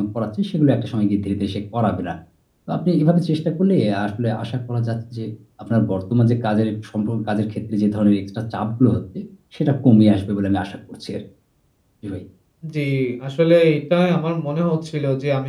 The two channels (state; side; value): identical; both; correlation 1.00